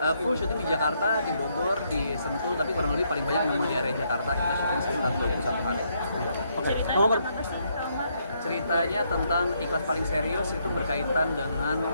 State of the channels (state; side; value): inverted; both; correlation -0.74